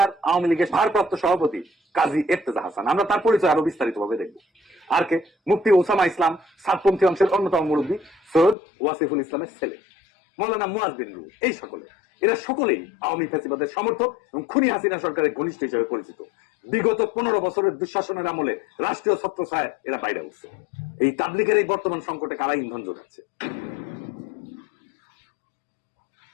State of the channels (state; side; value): drops out; right; at 8.6 s